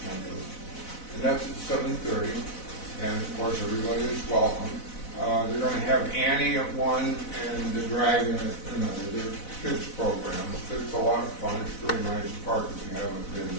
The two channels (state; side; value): late; right; 4.0 ms